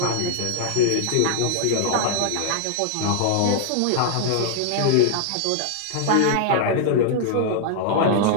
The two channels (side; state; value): both; different; correlation -0.01